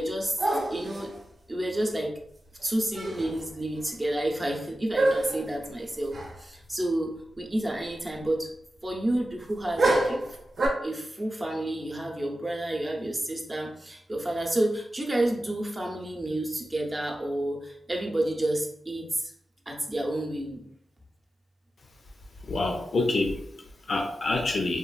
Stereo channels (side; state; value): both; normal; correlation 0.92